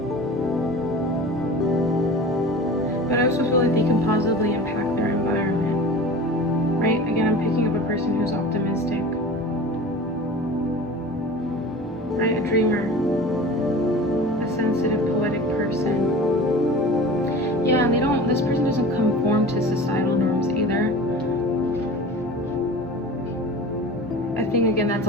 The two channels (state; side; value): normal; both; correlation 0.37